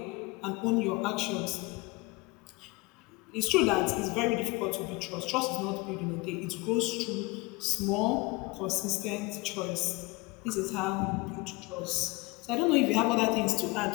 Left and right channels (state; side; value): quieter; right; 24.0 dB